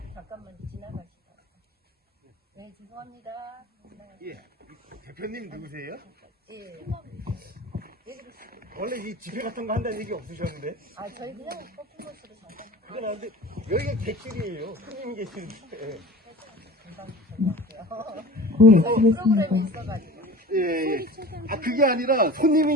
지나가시다. 네, 죄송합니다. 예, 대표님 누구세요? 예. 원래 이 집회 같은 거 한다는 얘기 없으셨는데? 아, 저희 그냥 퍼포먼스로 잠깐. 그건 안 돼. 여기가 객실이에요. 손님 계시는데. 프로그램이 있어가지고. 예. 아, 그게 아니라 손님이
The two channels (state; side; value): normal; both; correlation 0.39